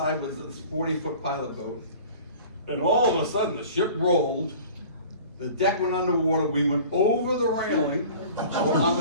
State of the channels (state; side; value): inverted; both; correlation -0.44